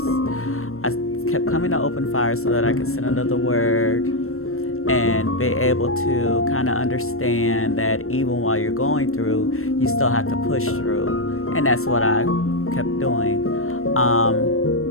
I kept coming to open fire so that I could sit under the word and be able to kind of understand that even while you're going through, you still have to push through. And that's what I kept doing.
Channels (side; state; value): right; late; 0.63 ms